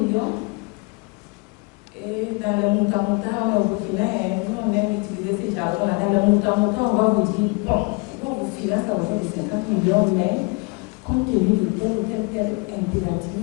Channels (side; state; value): right; quieter; 29.6 dB